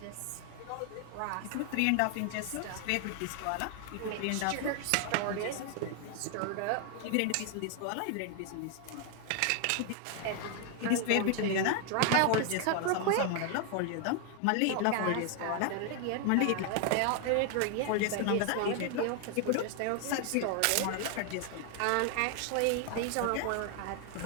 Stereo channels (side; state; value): both; different; correlation 0.00